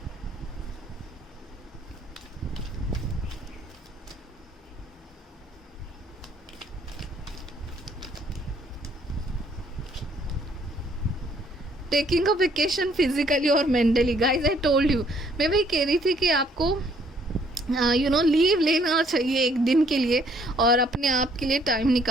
टेकिंग अ वेकेशन फिजिकली और mentally, guys I told you, मैं वही कह रही थी कि आपको यू नो लीव लेना चाहिए एक दिन के लिए, और अपने आप के लिए टाइम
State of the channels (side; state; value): both; normal; correlation 0.64